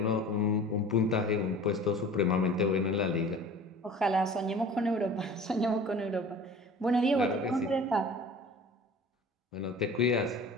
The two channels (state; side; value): normal; both; correlation 0.43